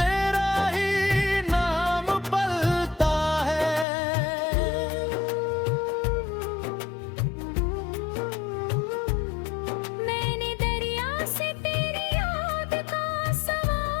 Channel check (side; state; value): right; drops out; at 3.9 s